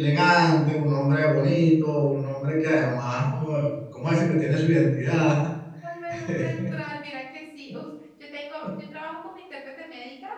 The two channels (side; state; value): both; identical; correlation 1.00